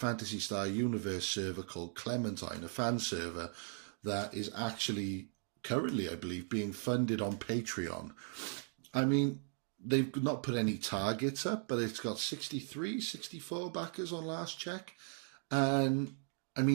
Star Universe server called Clementine, a fan server, that is actually currently, I believe, being funded on Patreon. I mean, they've not put any targets up, but it's got 63, 64 backers on last check. And, I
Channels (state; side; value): silent; left; 53 dB below the other